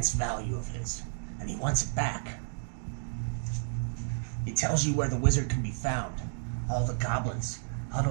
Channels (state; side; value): silent; left; digital silence